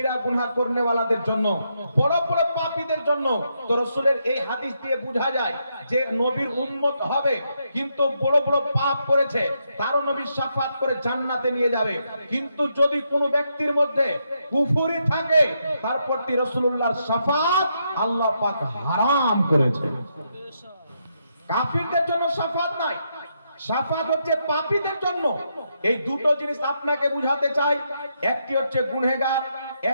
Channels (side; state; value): both; inverted; correlation -0.80